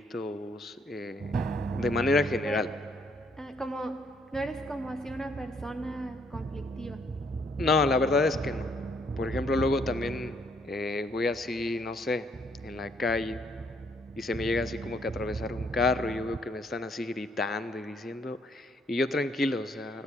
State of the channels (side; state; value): both; normal; correlation 0.69